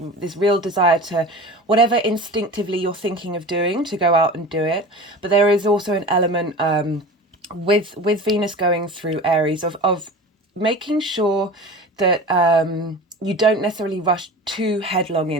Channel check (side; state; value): both; normal; correlation 0.35